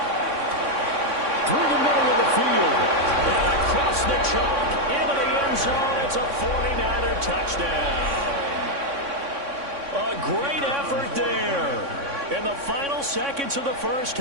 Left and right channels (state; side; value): late; left; 3.6 ms